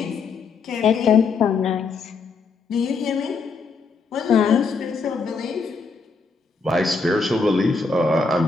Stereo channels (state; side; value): quieter; right; 4.6 dB